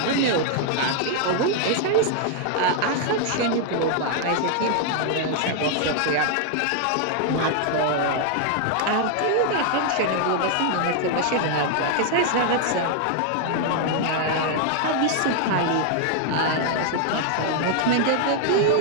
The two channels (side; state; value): both; different; correlation 0.00